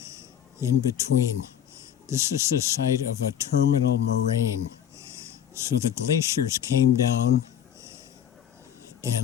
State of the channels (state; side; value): quieter; right; 9.7 dB